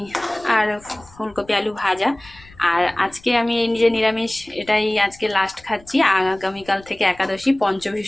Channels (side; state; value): left; noise; rumble, 24 dB below the sound